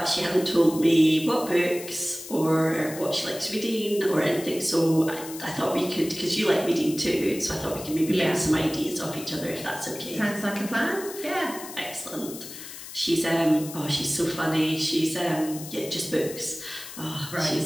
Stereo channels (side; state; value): left; noise; hiss, 12 dB below the sound